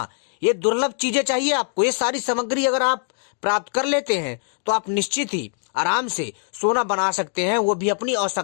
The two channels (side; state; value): right; silent; digital silence